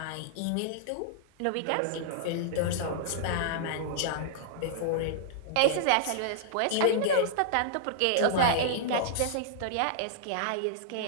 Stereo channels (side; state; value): both; different; correlation -0.01